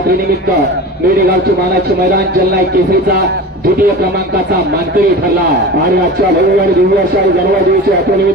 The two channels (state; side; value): normal; both; correlation 0.33